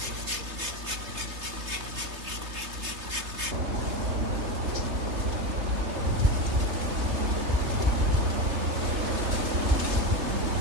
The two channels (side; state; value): left; late; 3.3 ms